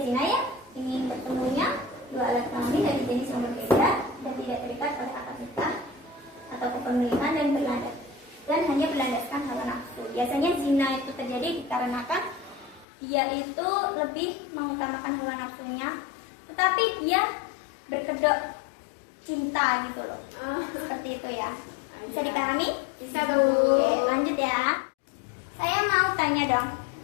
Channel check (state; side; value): drops out; right; at 12.9 s